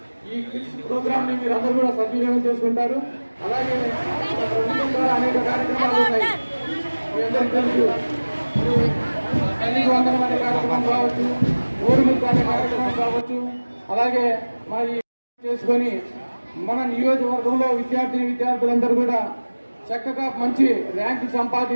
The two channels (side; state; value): both; inverted; correlation -1.00